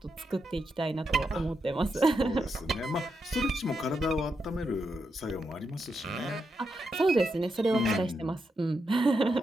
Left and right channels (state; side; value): normal; both; correlation 0.84